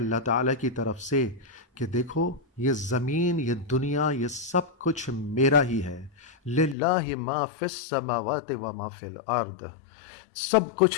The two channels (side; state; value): right; drops out; at 6.8 s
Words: تعالیٰ کی طرف سے کہ دیکھو یہ زمین، یہ دنیا، یہ سب کچھ میرا ہی ہے۔ للہ ما فی السماوات و ما فی الارض، سب